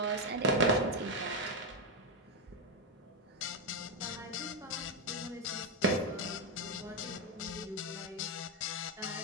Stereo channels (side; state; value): both; normal; correlation 0.05